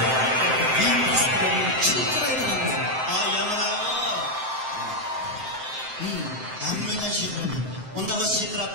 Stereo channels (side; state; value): left; late; 7.7 ms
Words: Anlayan şey mi? Onda masih şey